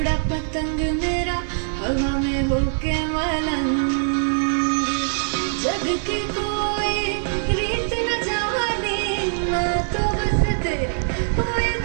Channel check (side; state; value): left; silent; digital silence